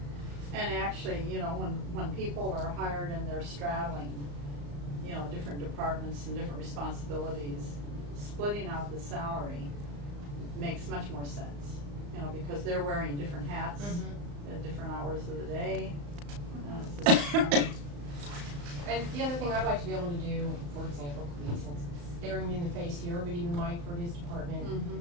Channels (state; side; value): late; left; 35 ms